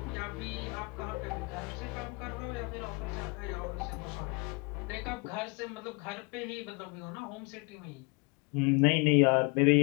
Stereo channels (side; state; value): right; quieter; 29.5 dB